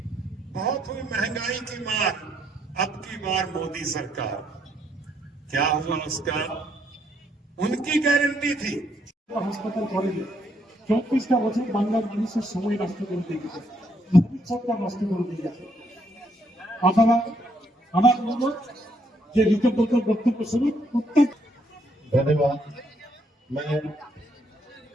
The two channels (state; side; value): normal; both; correlation 0.73